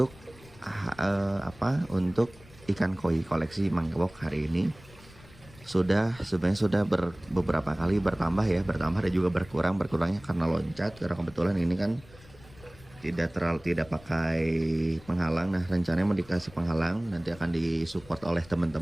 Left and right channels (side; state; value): left; noise; rumble, 22 dB below the sound